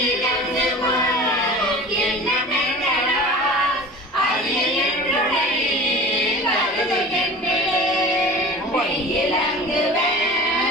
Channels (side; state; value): both; normal; correlation 0.38